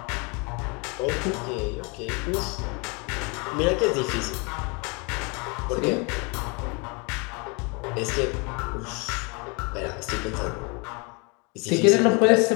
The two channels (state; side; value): quieter; right; 31.1 dB